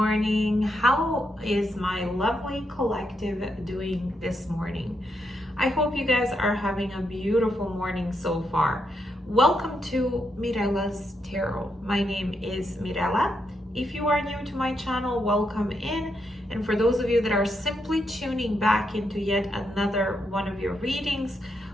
How is my lovely collective doing this morning? I hope you guys are having a beautiful morning so far. Welcome to Mirella's Tarot. My name is Mirella. If you are new to my channel, welcome in. And for those of you that are simply tuning back into yet another one of your readings,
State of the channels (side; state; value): both; normal; correlation 0.81